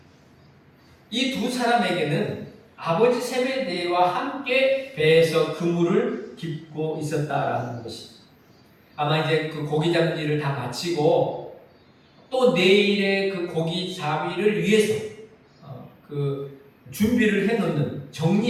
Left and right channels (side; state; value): both; identical; correlation 1.00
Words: 이 두 사람에게는 아버지 세베대와 함께 배에서 그물을 깁고 있었다라는 것입니다. 아마 이제 그 고기 잡는 일을 다 마치고 또 내일의 그 고기 잡이를 위해서 그 준비를 해놓는,